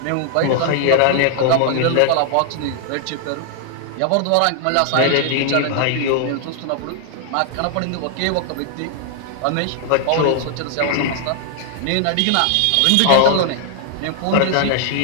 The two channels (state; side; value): different; both; correlation 0.00